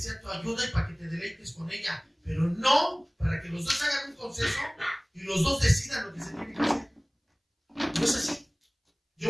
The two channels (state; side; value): identical; both; correlation 1.00